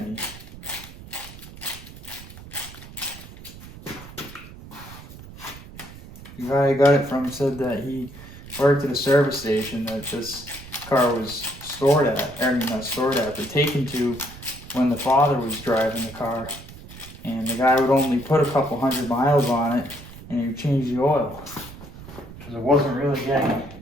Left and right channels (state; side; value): noise; right; rumble, 16 dB below the sound